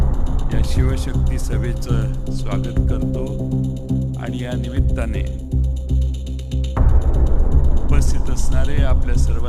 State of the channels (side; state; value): both; identical; correlation 1.00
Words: शिवशक्ती सभेचं स्वागत करतो आणि या निमित्ताने उपस्थित असणारे आपल्या